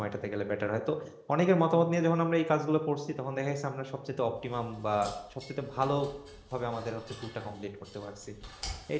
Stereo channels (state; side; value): identical; both; correlation 1.00